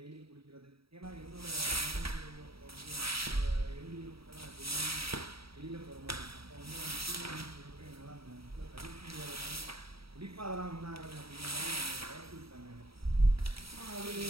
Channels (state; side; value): late; left; 0.76 ms